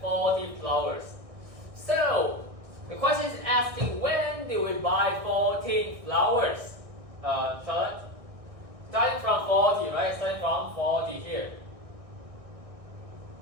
flowers. So, the question is asking when did we buy 14 flowers? Charlotte? Starting from 40, right? Starting from 40 here.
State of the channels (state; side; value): late; left; 1.6 ms